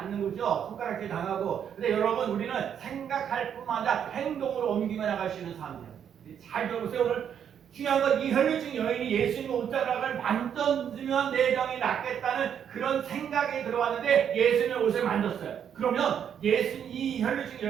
거죠. 손가락질 당하고. 근데 여러분, 우리는 생각할 뿐만 아니라 행동으로 옮기며 나갈 수 있는 사람이에요. 잘 들어보세요. 오늘 중요한 건 이 혈류증 여인이 예수님의 옷자락을 만져주면 내 병이 낫겠다는 그런 생각이 들어왔는데 예수님의 옷을 만졌어요. 그러면 이 혈류증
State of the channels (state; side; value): quieter; left; 8.6 dB